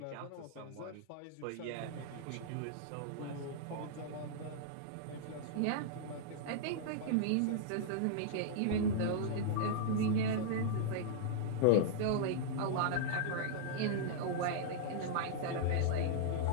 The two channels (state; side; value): different; both; correlation -0.01